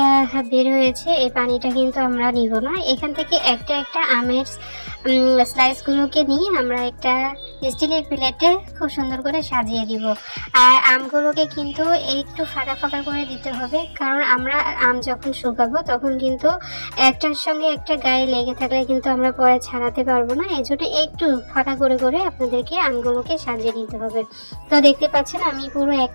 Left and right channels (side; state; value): both; inverted; correlation -1.00